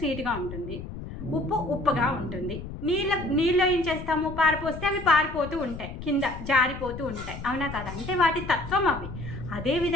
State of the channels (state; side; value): noise; left; rumble, 10 dB below the sound